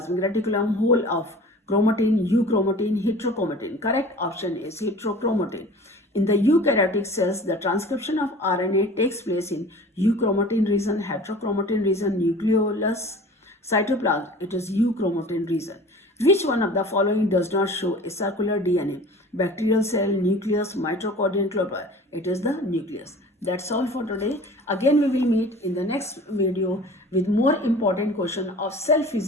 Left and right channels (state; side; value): normal; both; correlation 0.42